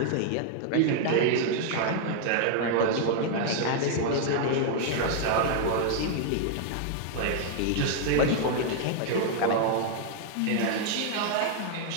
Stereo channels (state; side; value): different; both; correlation 0.00